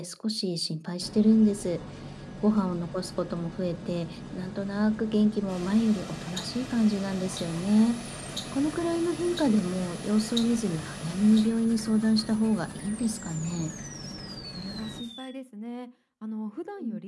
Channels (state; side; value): identical; both; correlation 1.00